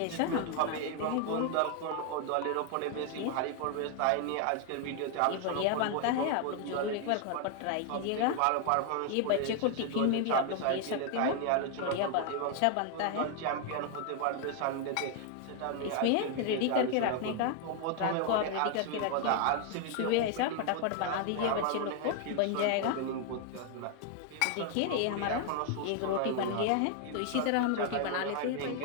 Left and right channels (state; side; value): different; both; correlation 0.00